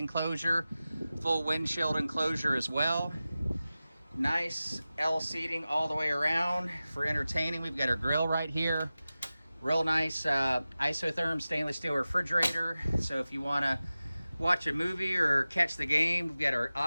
full windshield enclosure as well. Nice L seating all the way around for entertaining. We've got our grill right here. Real nice isotherm stainless steel refrigerator. So if you want to watch a movie or catch the game, we've got our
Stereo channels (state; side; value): inverted; both; correlation -0.96